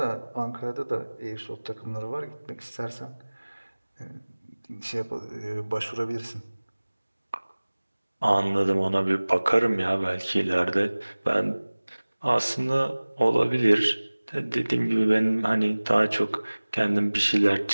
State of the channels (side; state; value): both; inverted; correlation -1.00